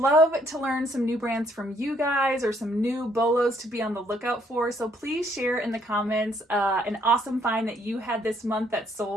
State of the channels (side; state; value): both; normal; correlation 0.67